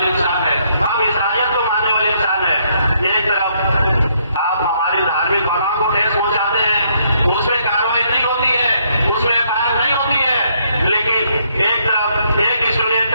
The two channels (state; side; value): inverted; both; correlation -0.71